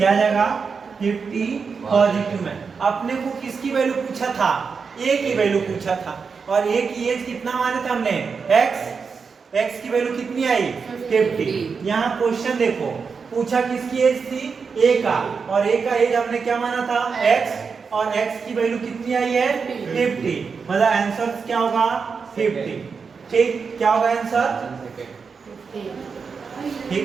जाएगा, 50 पॉजिटिव में। अपने को किसकी वैल्यू पूछा था, a की वैल्यू पूछा था, और a की एज कितना माने थे हमने, x की वैल्यू कितनी आई, 50। यहाँ क्वेश्चन देखो, पूछा किसकी एज थी, a का, और a का एज हमने क्या माना था, x, और x की वैल्यू कितनी आई है, 50, मतलब आंसर क्या होगा, 50। ठीक, क्या होगा आंसर,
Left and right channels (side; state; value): left; quieter; 5.4 dB